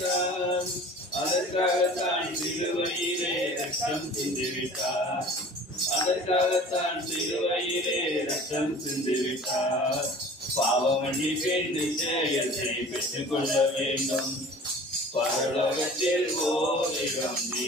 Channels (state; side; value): normal; both; correlation 0.44